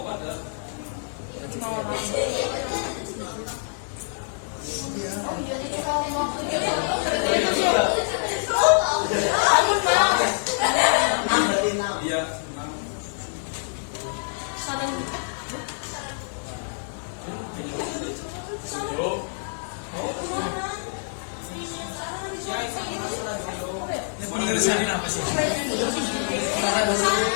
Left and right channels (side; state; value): right; silent; digital silence